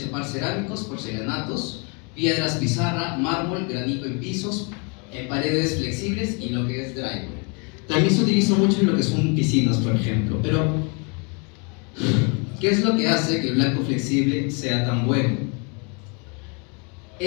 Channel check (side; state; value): right; quieter; 34.3 dB